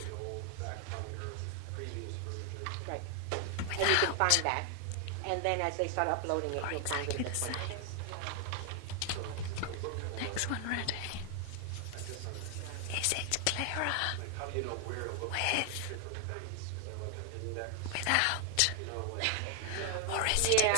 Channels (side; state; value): both; different; correlation 0.00